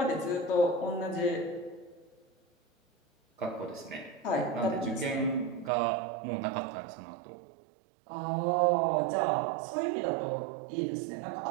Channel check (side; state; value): left; drops out; at 5.7 s